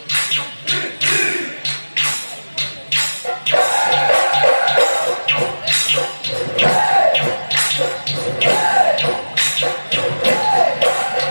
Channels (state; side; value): inverted; both; correlation -1.00